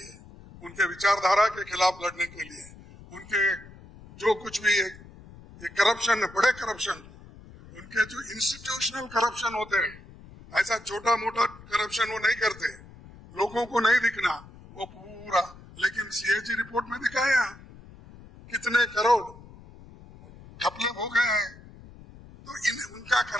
उनके विचारधारा के खिलाफ लड़ने के लिए, उनके जो कुछ भी ये करप्शन, बड़े करप्शन, उनके जो इंस्टीट्यूशनल करप्शन होते हैं, ऐसा छोटा मोटा करप्शन वो नहीं करते, लोगों को नहीं दिखना वो पूरा। लेकिन सीएजी रिपोर्ट में दिखाया कितने करोड़ घपले हो गए हैं। तो उनका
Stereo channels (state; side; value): noise; left; rumble, 20 dB below the sound